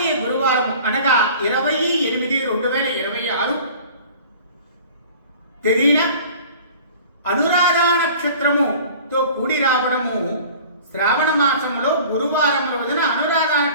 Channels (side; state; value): both; inverted; correlation -0.45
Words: గురువారం అనగా 20/8/2026 తేదీన అనురాధ నక్షత్రముతో కూడి రావడము, శ్రావణ మాసంలో గురువారం రోజున అనురాధ